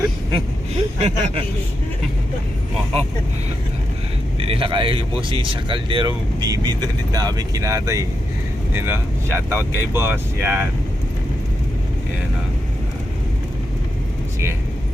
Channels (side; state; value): both; normal; correlation 0.85